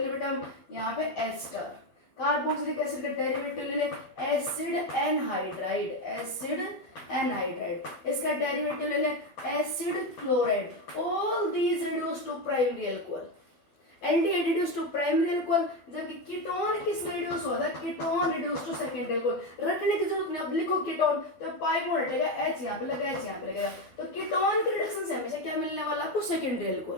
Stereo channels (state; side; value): late; right; 12 ms